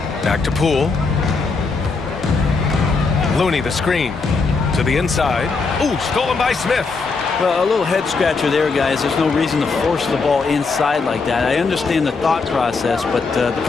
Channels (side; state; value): right; quieter; 4.4 dB